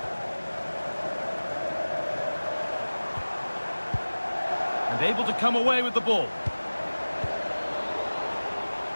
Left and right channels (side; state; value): both; inverted; correlation -1.00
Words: And able to come away with the ball.